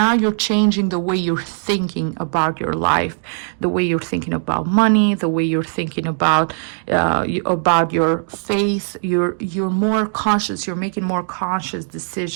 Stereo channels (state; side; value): silent; left; digital silence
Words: you're changing the way you're thinking about your life, the way you're thinking about money, the way you're thinking about your faith. You're more conscious, you're making more conscious